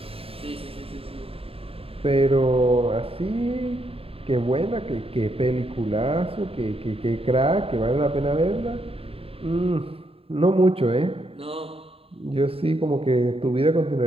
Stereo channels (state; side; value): late; left; 0.27 ms